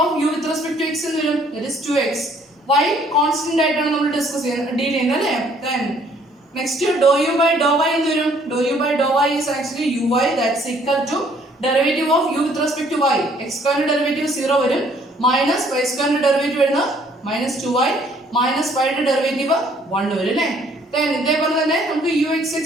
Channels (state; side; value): normal; both; correlation 0.62